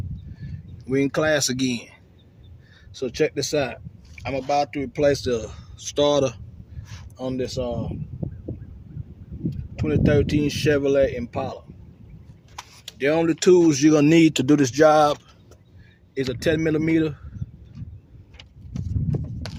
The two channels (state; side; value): identical; both; correlation 1.00